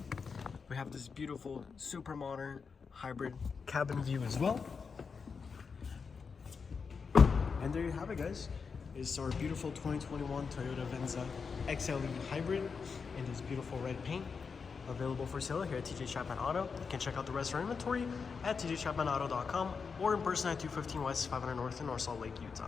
We have this beautiful, super modern hybrid cabin view as well. And there you have it, guys. It's our beautiful 2021 Toyota Venza XLE Hybrid in this beautiful red paint, available for sale here at TJ Chapman Auto. You can check out the rest of our inventory at tjchapmanauto.com or in person at 215 West 500 North in North Salt Lake,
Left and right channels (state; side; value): quieter; right; 5.5 dB